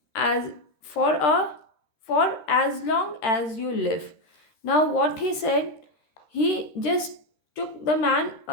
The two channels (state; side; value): late; right; 13 ms